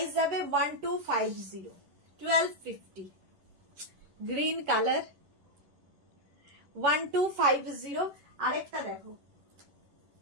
যাবে 1250, 1250। Green colour, 1250। আরেকটা দেখো,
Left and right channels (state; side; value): late; left; 11 ms